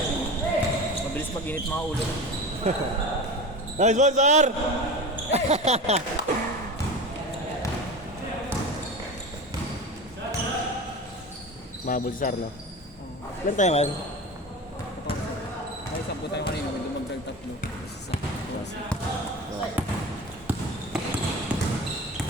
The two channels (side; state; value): both; normal; correlation 0.30